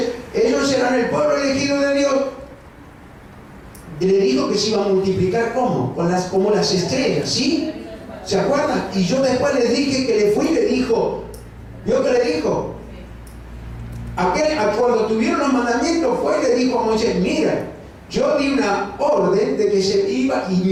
ellos eran el pueblo elegido de Dios. Le dijo que se iba a multiplicar ¿cómo? Como las estrellas, ¿sí? ¿Se acuerdan? Y yo después les dije que le fui y le dijo, ¿vio que le dijo? Cuando tuvieron los mandamientos fue y le dijo a Moisés, mira, yo di una orden de que se iba y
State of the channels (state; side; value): identical; both; correlation 1.00